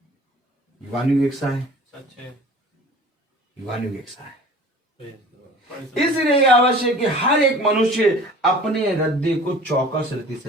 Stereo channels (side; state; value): both; normal; correlation 0.44